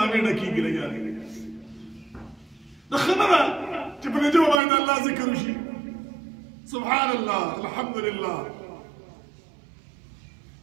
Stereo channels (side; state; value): left; drops out; at 4.6 s